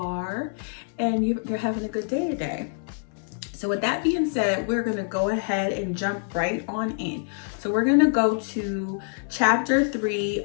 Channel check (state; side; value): silent; right; 61 dB below the other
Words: and you're having a good day today. So with that being said, we're gonna go ahead and jump right on in. So we're gonna go to chapter